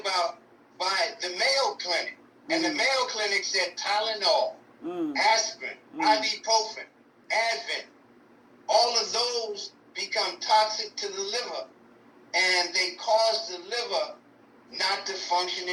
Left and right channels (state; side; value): identical; both; correlation 1.00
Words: by the Mayo Clinic. And the Mayo Clinic said Tylenol, aspirin, ibuprofen, Advil, all of those become toxic to the liver, and they cause the liver not to function